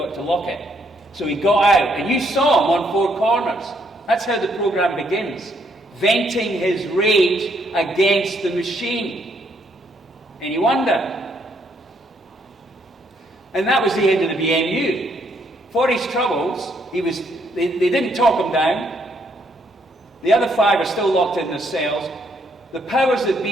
to lock it. So he got out. And you saw him on 4 corners. That's how the programme begins. Venting his rage against the machine. And you wonder. And that was the end of the BMU. For his troubles, they didn't talk him down. The other 5 are still locked in their cells. The powers that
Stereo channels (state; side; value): normal; both; correlation 0.72